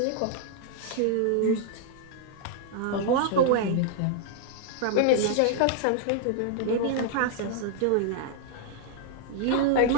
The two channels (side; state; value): both; different; correlation 0.00